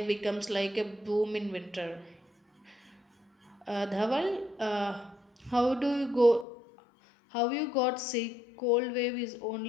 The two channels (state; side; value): drops out; right; at 6.5 s